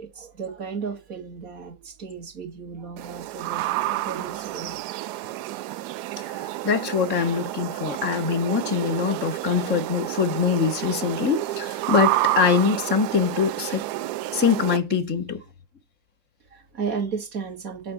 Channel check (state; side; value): late; left; 3.7 ms